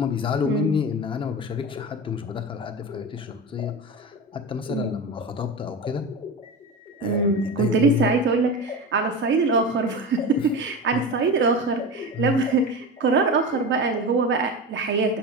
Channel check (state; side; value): normal; both; correlation 0.25